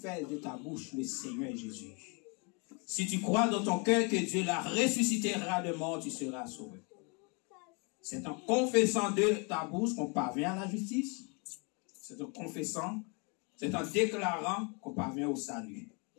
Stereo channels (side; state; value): right; quieter; 33.3 dB